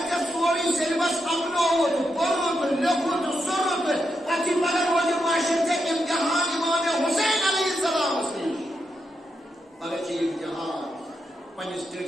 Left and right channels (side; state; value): both; normal; correlation 0.84